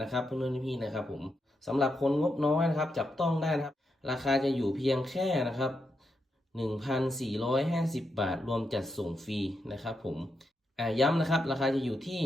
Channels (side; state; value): both; normal; correlation 0.84